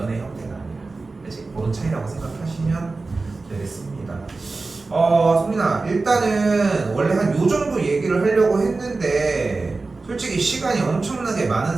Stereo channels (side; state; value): left; quieter; 3.7 dB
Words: 형태가 아니라. 그치? 그런 차이라고 생각하시면 되겠습니다. 소민아, 일단은 원래 한 요 정도 얘기를 하려고 했는데 솔직히 시간이 엄청나게